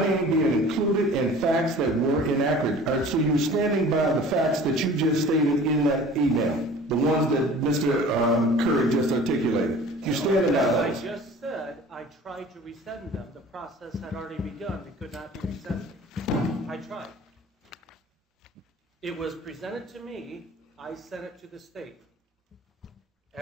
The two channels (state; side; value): normal; both; correlation 0.45